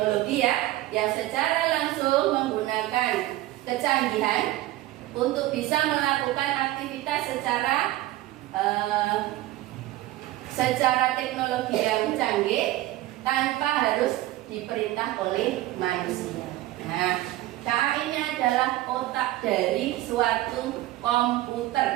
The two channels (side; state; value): left; quieter; 16.4 dB